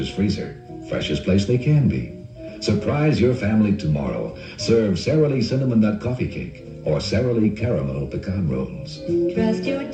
freezer. Freshest place they can be. Surprise your family tomorrow. Serve Sara Lee Cinnamon Nut Coffee Cake or Sara Lee Caramel Pecan Rolls. Trust your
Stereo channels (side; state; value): both; identical; correlation 1.00